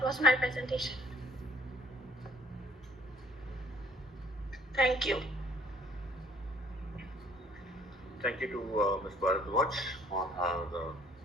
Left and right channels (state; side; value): normal; both; correlation 0.59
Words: was my presentation. Thank you. Thank you to Ms. Bharadwaj on her